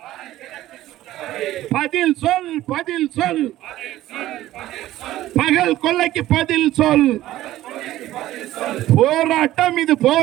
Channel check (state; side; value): quieter; left; 14.9 dB